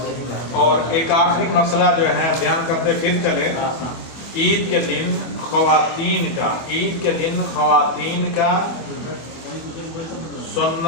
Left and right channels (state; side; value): late; right; 24 ms